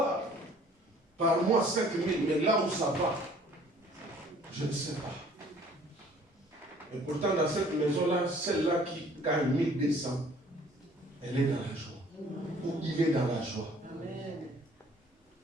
par mois 5 000, mais là où ça va, je ne sais pas. Et pourtant, dans cette maison-là, celle-là qui gagne 1200, elle est dans la joie. Ou il est dans la joie.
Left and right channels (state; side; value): normal; both; correlation 0.55